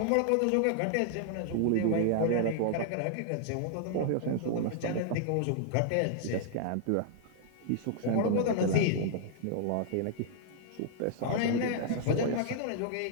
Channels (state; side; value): different; both; correlation -0.01